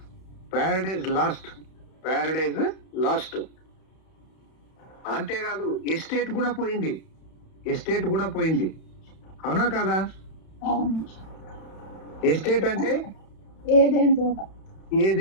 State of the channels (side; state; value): right; late; 31 ms